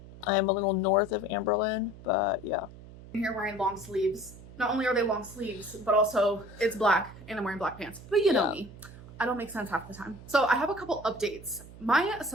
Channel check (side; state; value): right; noise; hum, 17 dB below the sound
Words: I am a little north of Amberlynn, but yeah. I'm here wearing long sleeves. Not only are they long sleeves, but also it's black and I'm wearing black pants. But you know me. I don't make sense half the time. So I have a couple updates. My